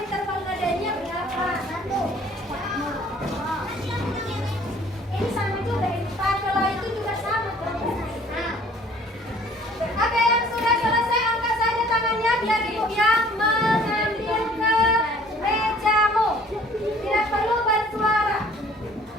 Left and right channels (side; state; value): both; normal; correlation 0.55